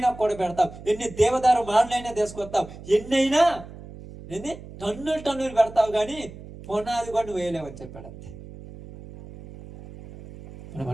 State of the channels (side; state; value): right; noise; hum, 16 dB below the sound